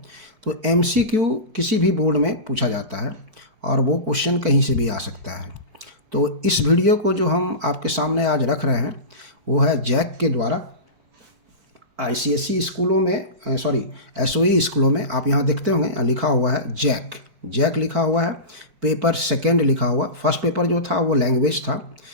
तो एमसीक्यू किसी भी बोर्ड में पूछा जाता है, और वो क्वेश्चन कहीं से भी आ सकता है। तो इस वीडियो को जो हम आपके सामने आज रख रहे हैं वो है जैक के द्वारा आईसीएसई स्कूलों में, एसओई स्कूलों में। आप यहाँ देखते होंगे लिखा हुआ है जैक लिखा हुआ है। पेपर सेकंड लिखा हुआ। फर्स्ट पेपर जो था वो लैंग्वेज था,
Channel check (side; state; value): left; late; 4.5 ms